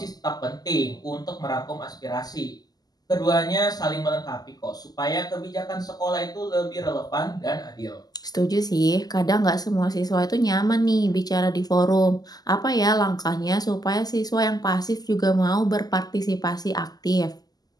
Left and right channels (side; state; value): right; late; 0.19 ms